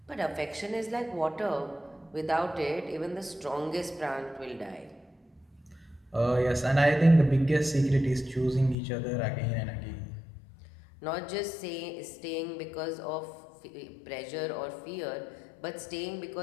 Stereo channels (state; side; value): drops out; right; at 8.8 s